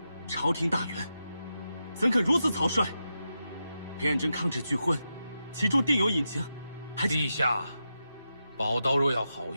朝廷大员怎肯如此草率？裴彦真抗旨拒婚，其中定有隐情。陛下，宝刀若要好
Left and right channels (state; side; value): inverted; both; correlation -0.88